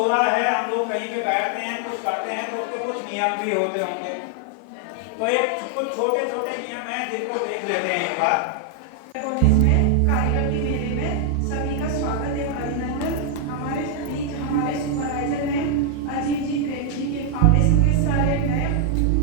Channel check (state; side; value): different; both; correlation 0.00